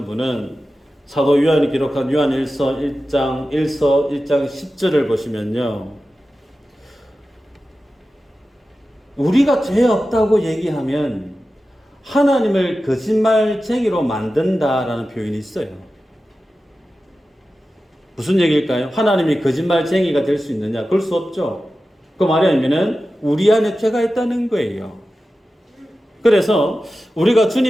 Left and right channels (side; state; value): both; normal; correlation 0.94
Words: 분은 사도 요한이 기록한 요한일서 1장 10절을 보시면요, 우리가 죄 없다고 얘기하면 하나님을 거짓말쟁이로 만든다라는 표현이 있어요. 무슨 얘기일까요? 하나님이 거짓말쟁이가 될 수 있느냐? 그럴 수 없죠. 그 말이 아니면은 우리 안에 죄가 있다는 거예요. 그래서 우리가